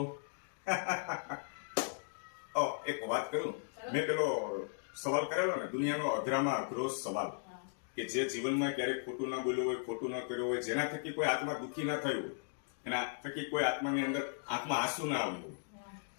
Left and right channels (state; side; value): silent; right; digital silence